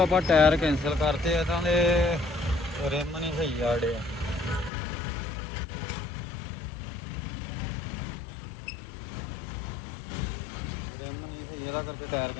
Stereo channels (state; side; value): drops out; right; at 4.7 s